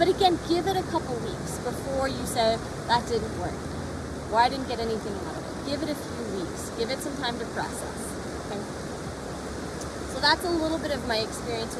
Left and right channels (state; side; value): identical; both; correlation 1.00